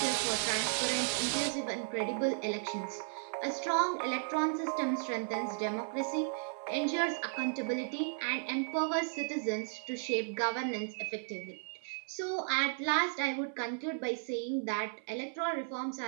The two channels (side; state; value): left; silent; 55 dB below the other